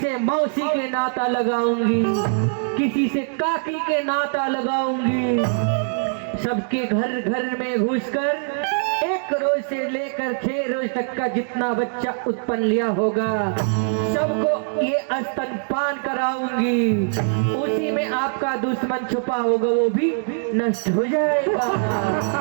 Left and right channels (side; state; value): left; silent; 64 dB below the other